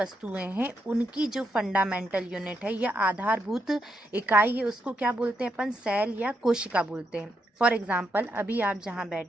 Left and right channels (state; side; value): normal; both; correlation 0.81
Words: हैं उनकी जो फंडामेंटल यूनिट है या आधारभूत इकाई है उसको क्या बोलते हैं अपन? सेल या कोशिका बोलते हैं। फॉर एग्जाम्पल, अभी आप जहाँ